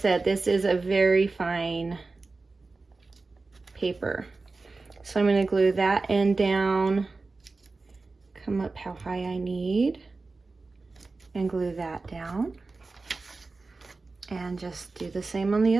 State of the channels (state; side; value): quieter; left; 3.7 dB